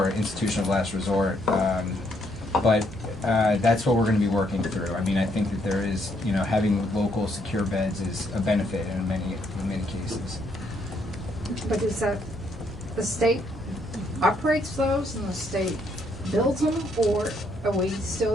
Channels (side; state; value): right; noise; hum, 20 dB below the sound